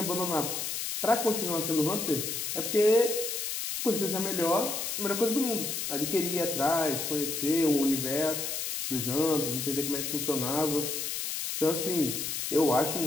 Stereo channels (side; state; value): left; noise; hiss, 3 dB below the sound